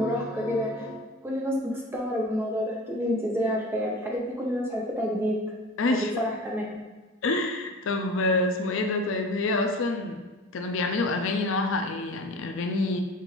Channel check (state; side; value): normal; both; correlation 0.38